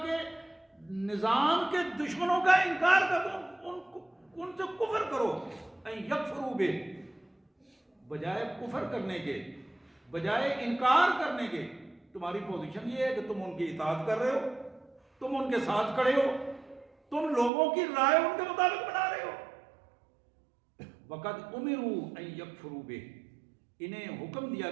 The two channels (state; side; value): drops out; left; at 17.5 s